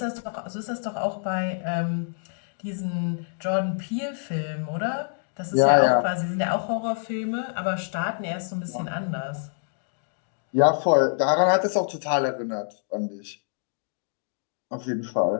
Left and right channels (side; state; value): right; silent; digital silence